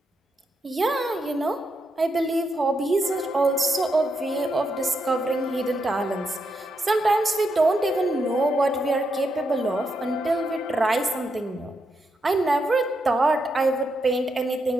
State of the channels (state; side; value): normal; both; correlation 0.82